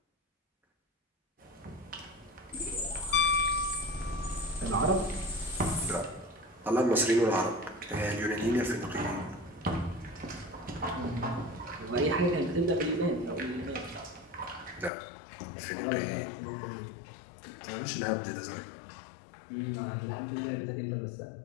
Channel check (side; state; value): right; drops out; at 14.9 s